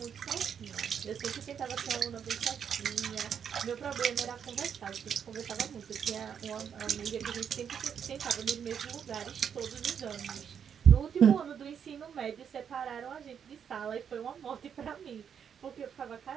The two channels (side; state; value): left; quieter; 7.8 dB